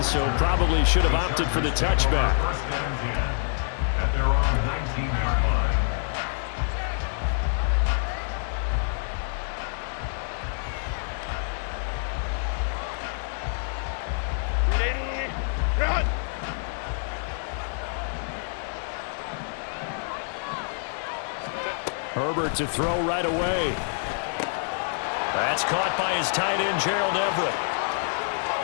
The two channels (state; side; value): silent; right; digital silence